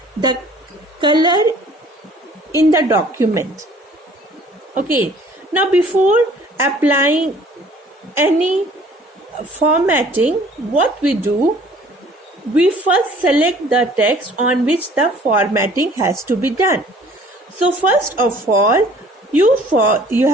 the color in the document. Okay, now before applying any formatting, what we do, we first select the text on which the formatting has to be done. So first of all, you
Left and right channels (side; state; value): both; normal; correlation 0.54